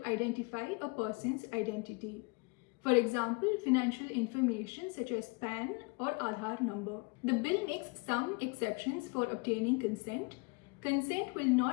identify a person's identity. For example, financial information such as PAN or Aadhaar number. The bill makes some exceptions for obtaining consent. Consent will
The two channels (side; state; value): right; quieter; 29.0 dB